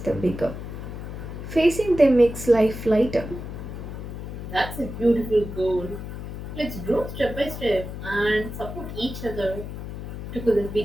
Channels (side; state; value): left; noise; hum, 8 dB below the sound